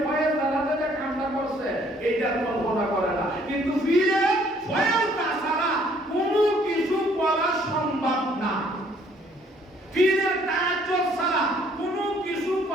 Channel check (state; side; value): normal; both; correlation 0.62